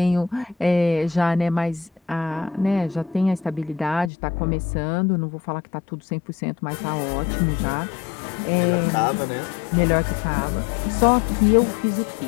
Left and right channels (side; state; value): right; drops out; at 4.1 s